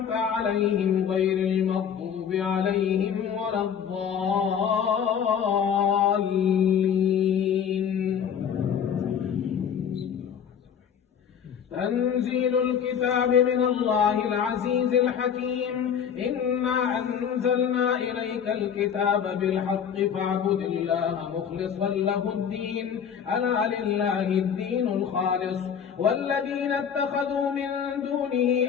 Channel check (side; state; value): right; quieter; 7.9 dB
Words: عليهم غير المغضوب عليهم ولا الضالين. تنزيل الكتاب من الله العزيز الحكيم. إنا أنزلنا إليك الكتاب بالحق فاعبد الله مخلصا له الدين ألا لله الدين الخالص والذين اتخذوا من دونه